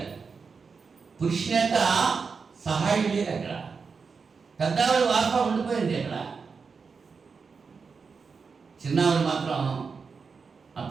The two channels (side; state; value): left; quieter; 5.2 dB